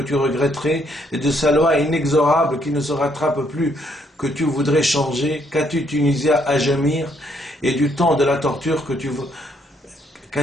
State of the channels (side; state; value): both; normal; correlation 0.70